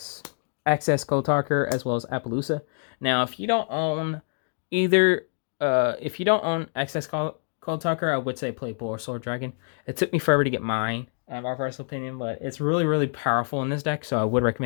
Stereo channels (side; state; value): right; silent; digital silence